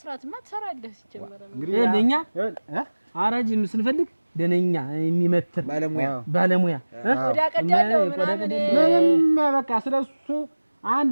ትሰራለህ። ሲጀመር እንግዲህ ለኛ አራጅ ስንፈልግ ደነኛ የሚመትር ባለሙያ ቆዳ ቀዳለው ምንም በቃ ስለሱ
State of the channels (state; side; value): inverted; both; correlation -1.00